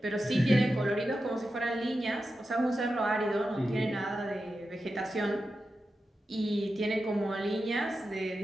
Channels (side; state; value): both; normal; correlation 0.91